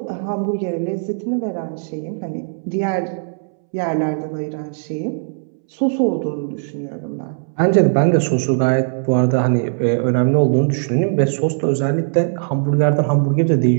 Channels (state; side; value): silent; left; 66 dB below the other